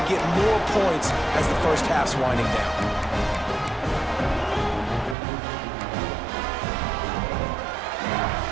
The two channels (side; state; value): left; drops out; at 5.2 s